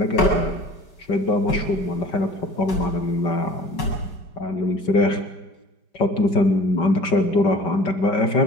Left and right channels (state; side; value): late; right; 5.3 ms